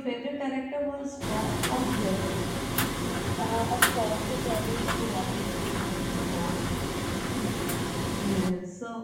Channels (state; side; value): identical; both; correlation 1.00